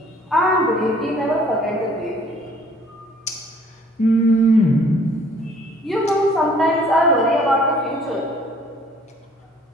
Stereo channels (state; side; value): normal; both; correlation 0.57